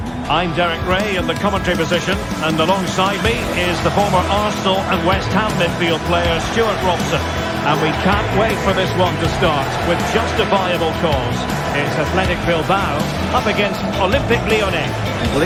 I'm Derek Ray in the commentary position, and alongside me is the former Arsenal and West Ham midfield player Stuart Robson. And we can't wait for this one to start with justifiable cause. It's Athletic Bilbao up against Olympique Lyonnais. Well,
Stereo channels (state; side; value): identical; both; correlation 1.00